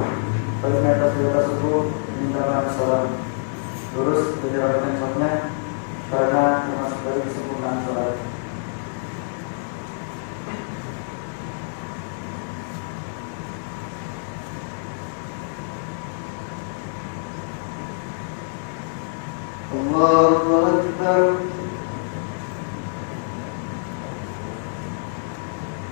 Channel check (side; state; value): right; silent; 57 dB below the other